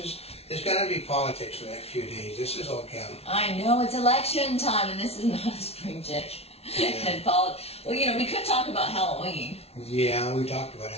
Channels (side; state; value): right; late; 0.30 ms